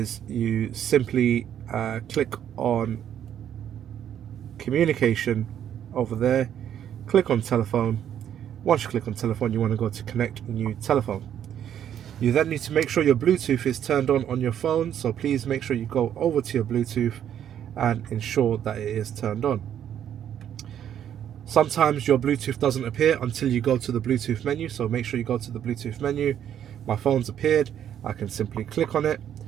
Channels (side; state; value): left; quieter; 9.9 dB